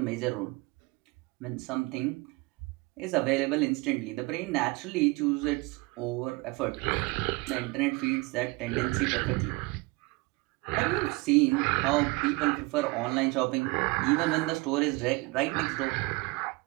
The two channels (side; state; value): left; quieter; 25.1 dB